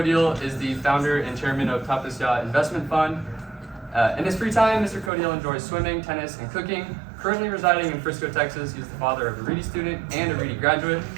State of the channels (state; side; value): drops out; left; at 5.1 s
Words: is the founder and chairman of Tapasya Investment Fund. In his free time, Mr. Kodial enjoys swimming, tennis, and cooking. Currently residing in Frisco, Texas, he's the father of a Reedy student and a Reedy graduate.